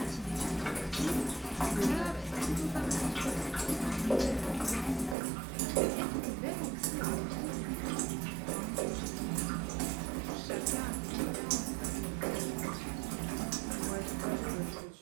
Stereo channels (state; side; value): drops out; left; at 5.2 s